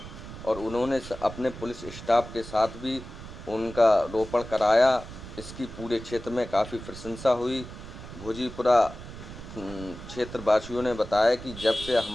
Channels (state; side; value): noise; right; rumble, 13 dB below the sound